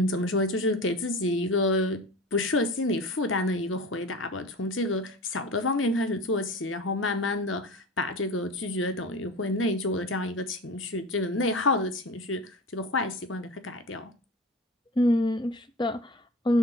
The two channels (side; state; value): both; normal; correlation 0.32